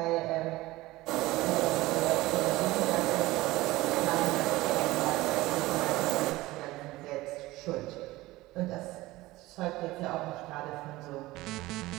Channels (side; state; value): left; quieter; 18.8 dB